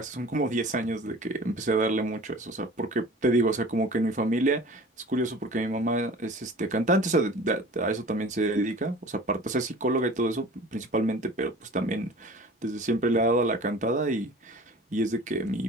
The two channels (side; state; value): both; normal; correlation 0.42